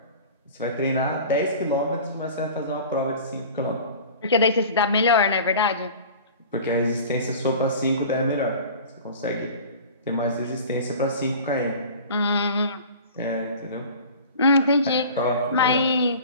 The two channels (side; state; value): both; inverted; correlation -0.41